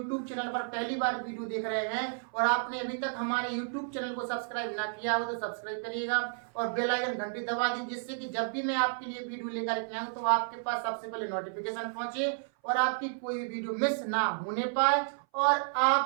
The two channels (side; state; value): left; silent; 57 dB below the other